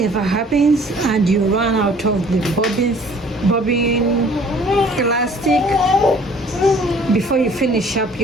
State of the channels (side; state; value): both; normal; correlation 0.54